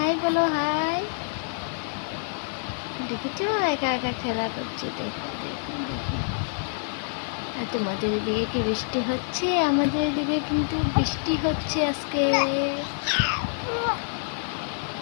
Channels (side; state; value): right; silent; 60 dB below the other